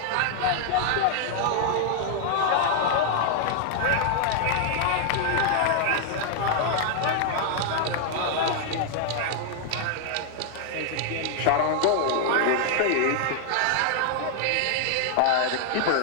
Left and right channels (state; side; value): different; both; correlation 0.00